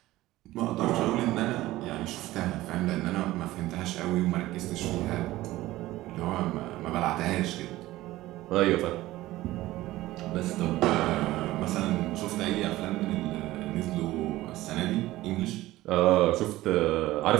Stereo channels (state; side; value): quieter; left; 16.8 dB